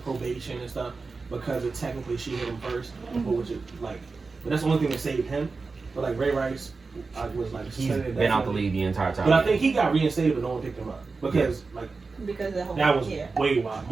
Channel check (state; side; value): quieter; left; 4.2 dB